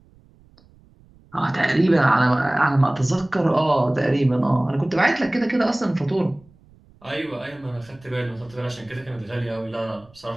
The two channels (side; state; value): right; noise; rumble, 28 dB below the sound